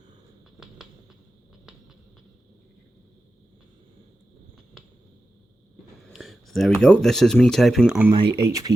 There we go. This is me typing on my HP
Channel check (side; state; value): both; normal; correlation 0.92